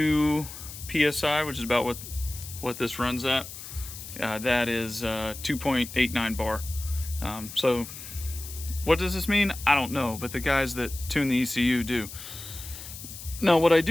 psi, which is about what this runs at. That is 2.89 bar. So what does this mean? I don't know, but the guys that tune the ECU do. Now what I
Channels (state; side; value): noise; left; hiss, 12 dB below the sound